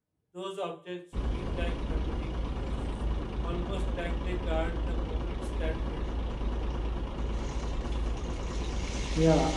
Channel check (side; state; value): both; identical; correlation 1.00